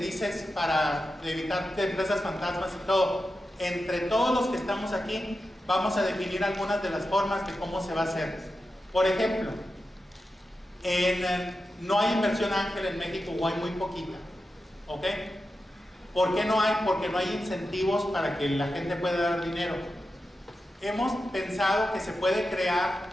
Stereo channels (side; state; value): both; normal; correlation 0.91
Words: para evitar empresas fantasmas y todo, entre todos los que estamos aquí, vamos a definir algunas de las formas de cómo se va a hacer. Por ejemplo, no hay inversión ángel en México o hay muy poquita, ¿ok? ¿Por qué no hay? Porque no hay incentivos para que la gente pueda dar dinero. Hemos pensado que se puede crear